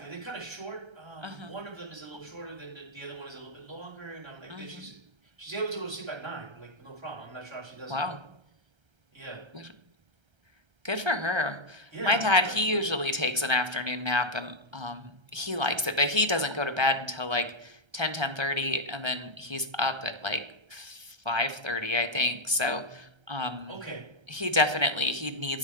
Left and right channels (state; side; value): late; left; 1.3 ms